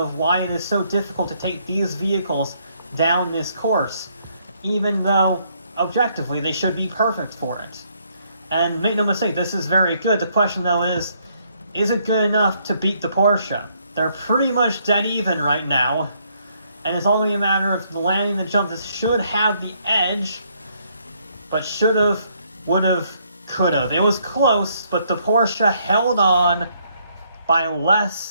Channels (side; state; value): both; inverted; correlation -0.70